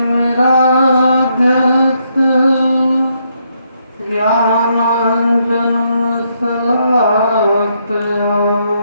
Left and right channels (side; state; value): both; inverted; correlation -0.76